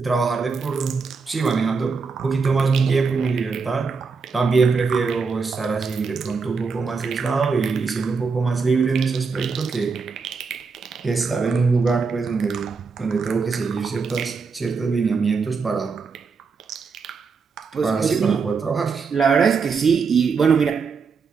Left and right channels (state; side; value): quieter; left; 5.0 dB